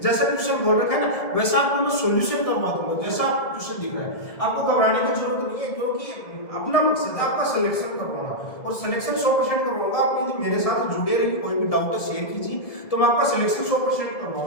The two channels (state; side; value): late; right; 1.7 ms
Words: जैसा ट्यूशन बोल रखा है ना वैसा आपको मैं सॉल्यूशन करवा दूंगा, जैसा आपको ट्यूशन दिख रहा है। आपको घबराने की जरूरत नहीं है, क्योंकि अपना मकसद है आपका सिलेक्शन करवाना, और सिलेक्शन 100% करवाऊंगा। आप यदि मेरे साथ जुड़े रहिए, कोई भी डाउट है शेयर कीजिए, तो मैं आपका सिलेक्शन 100%